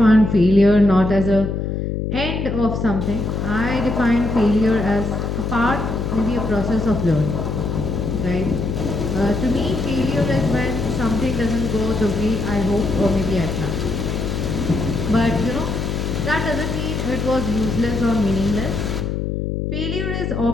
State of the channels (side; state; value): left; noise; hum, 2 dB below the sound